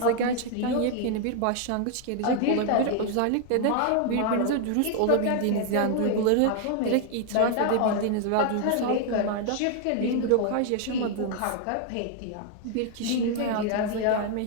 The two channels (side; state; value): both; different; correlation 0.00